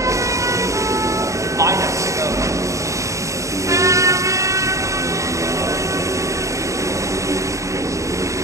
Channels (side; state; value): left; late; 0.15 ms